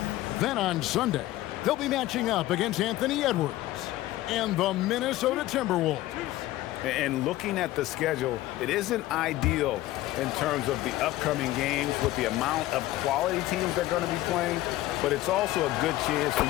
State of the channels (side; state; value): right; quieter; 16.1 dB